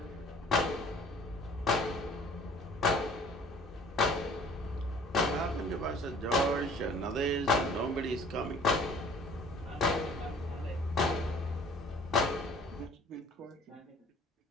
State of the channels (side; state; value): both; normal; correlation 0.52